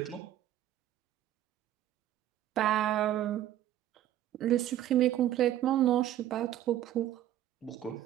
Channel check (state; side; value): quieter; left; 12.5 dB